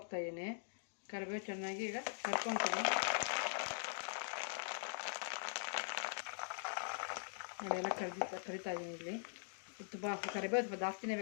ಕರಿಬೇವು ಚೆನ್ನಾಗಿ ಈಗ ಕರ್ಕೊತೀನಿ ನೋಡಿ. ಎಲ್ಲ ಕರಿತಾ ಇದ್ದೀನಿ ಇಲ್ಲಿ. ತುಂಬ ಕರಿಬೇವು ಸ್ವಲ್ಪ ಜಾಸ್ತಿನೇ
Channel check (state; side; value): silent; right; digital silence